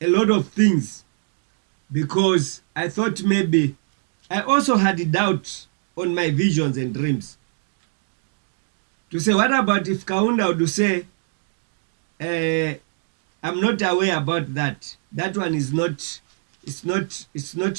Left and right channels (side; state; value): left; silent; digital silence